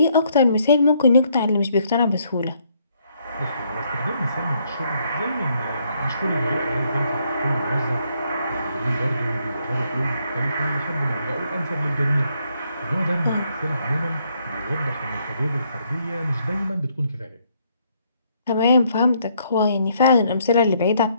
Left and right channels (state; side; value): inverted; both; correlation -0.71